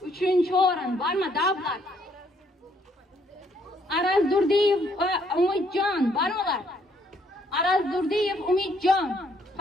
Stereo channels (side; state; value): both; normal; correlation 0.68